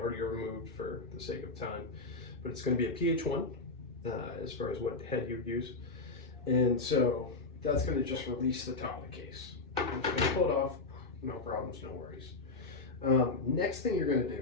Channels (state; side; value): quieter; right; 3.5 dB